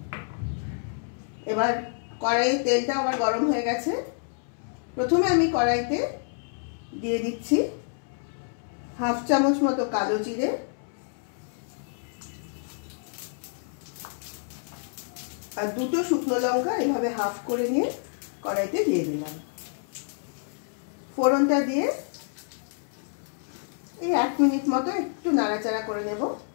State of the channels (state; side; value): silent; right; 59 dB below the other